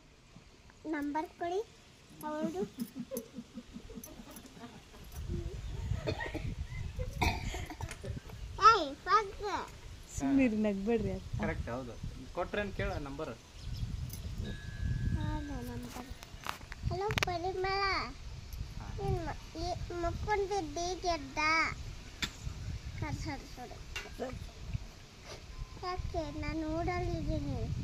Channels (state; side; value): identical; both; correlation 1.00